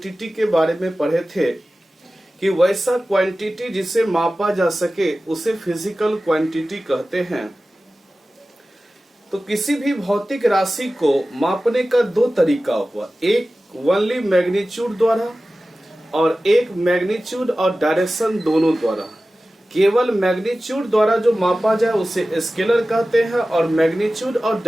के बारे में पढ़े थे कि वैसा क्वांटिटी जिसे मापा जा सके उसे फिजिकल क्वांटिटी कहते हैं। तो किसी भी भौतिक राशि को मापने का दो तरीका हुआ, एक ओनली मैग्नीट्यूड द्वारा और एक मैग्नीट्यूड और डायरेक्शन दोनों द्वारा। केवल मैग्नीट्यूड द्वारा जो मापा जाए उसे स्केलर कहते हैं और मैग्नीट्यूड और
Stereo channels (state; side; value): normal; both; correlation 0.95